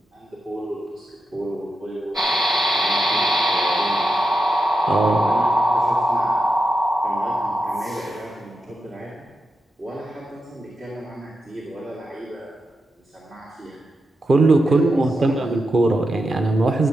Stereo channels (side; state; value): both; normal; correlation 0.88